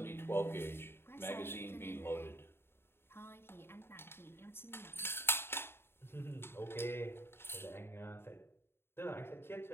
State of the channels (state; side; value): late; right; 0.11 ms